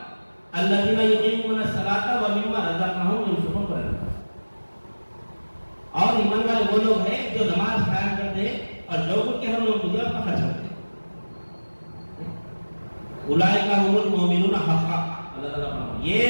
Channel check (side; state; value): both; inverted; correlation -1.00